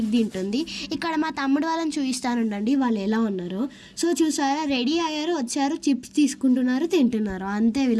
తింటుంది. ఇక్కడ మా తమ్ముడు వాళ్ళని చూపిస్తానుండండి వాళ్ళు ఎలా ఉన్నారో. సో చూసారా, రెడీ అయ్యారు, వచ్చారు, చిప్స్ తీసుకుంటున్నారు, తింటున్నారు. అంతే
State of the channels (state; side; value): identical; both; correlation 1.00